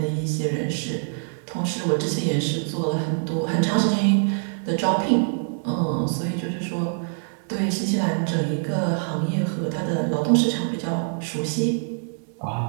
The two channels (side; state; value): left; silent; digital silence